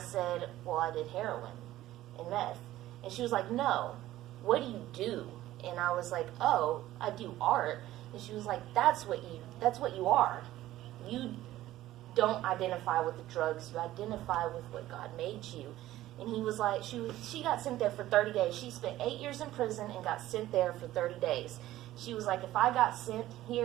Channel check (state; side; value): quieter; left; 14.9 dB